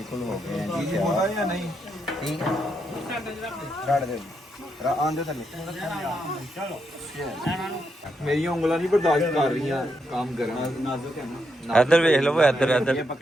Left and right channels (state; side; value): normal; both; correlation 0.81